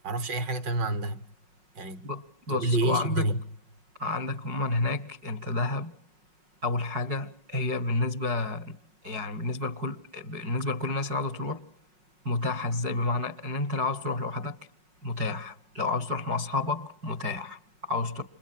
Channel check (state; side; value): late; left; 5.5 ms